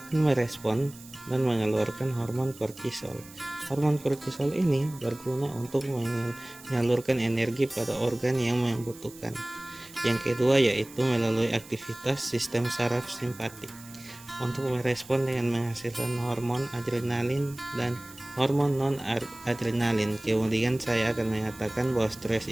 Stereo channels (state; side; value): noise; right; hiss, 20 dB below the sound